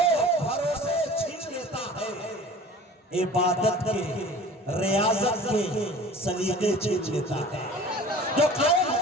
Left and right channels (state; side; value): normal; both; correlation 0.43